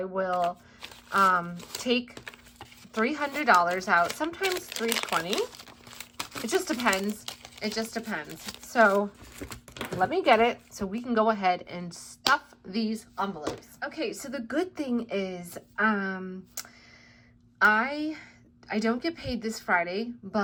will take $300 out, sometimes $320. It just depends. It just depends. So let me get it so we can go ahead and stuff these envelopes. Okay, so the good thing is I don't get paid this Friday,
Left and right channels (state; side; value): identical; both; correlation 1.00